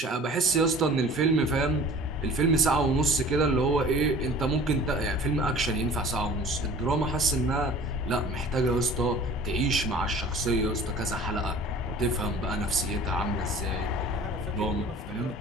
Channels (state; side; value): normal; both; correlation 0.45